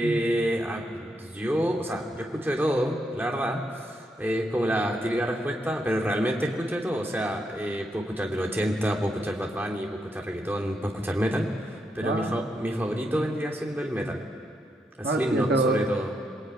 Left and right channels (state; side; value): normal; both; correlation 0.81